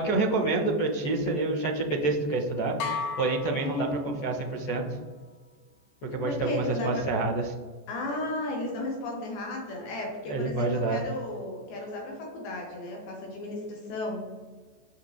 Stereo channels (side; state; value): right; late; 14 ms